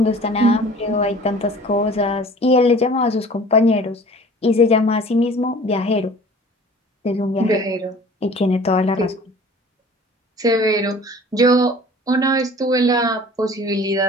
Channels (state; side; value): normal; both; correlation 0.46